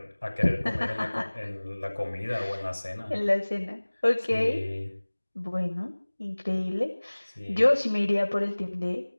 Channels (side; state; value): both; inverted; correlation -1.00